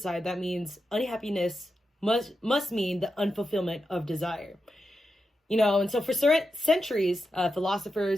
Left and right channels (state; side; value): normal; both; correlation 0.88